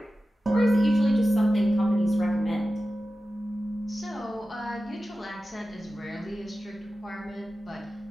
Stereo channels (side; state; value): both; normal; correlation 0.94